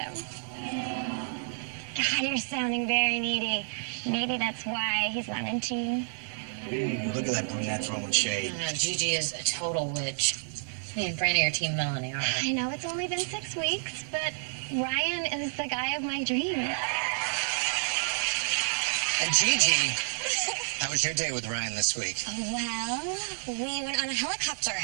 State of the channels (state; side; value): silent; left; digital silence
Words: God, you're sounding very needy. Maybe that's why he's not into you. Look at that brunette throwing shade. No, Gigi is a total witch. Me and Franny are Team Melanie, aren't we? I know it's only been 6 weeks, but Ryan is the guy of my dreams. And Gigi, how was your day with Ryan this week? Well, we went on a helicopter